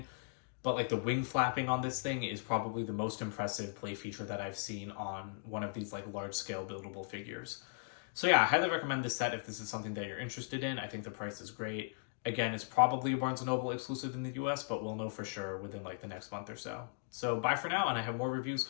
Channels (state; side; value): silent; right; digital silence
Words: but like the wing flapping on this thing is probably the most impressive play feature that I've seen on one of these like large scale buildable figures. So yeah, I highly recommend this set if this is something that you're interested in. I think the price is great. Again, it's probably a Barnes & Noble exclusive in the US, but we'll know for sure within like the next month or so. So bye for now, and I have more reviews